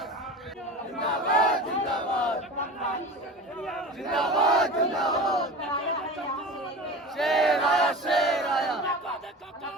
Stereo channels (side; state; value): both; normal; correlation 0.33